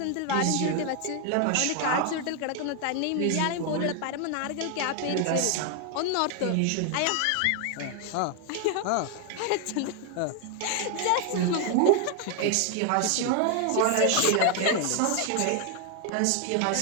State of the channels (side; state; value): both; different; correlation 0.01